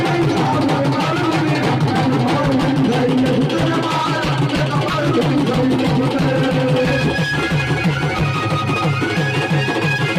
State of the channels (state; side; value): identical; both; correlation 1.00